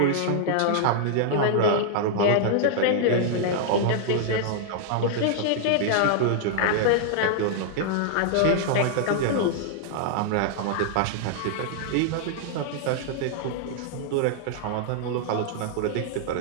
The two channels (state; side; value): different; both; correlation -0.01